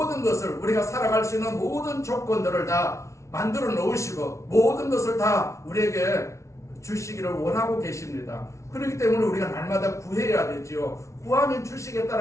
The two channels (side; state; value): right; late; 0.14 ms